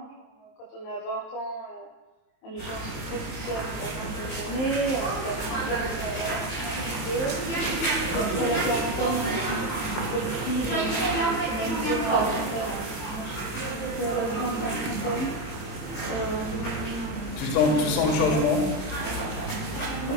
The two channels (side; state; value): right; late; 27 ms